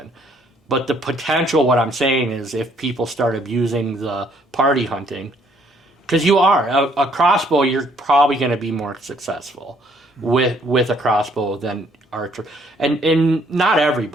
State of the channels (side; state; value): both; normal; correlation 0.65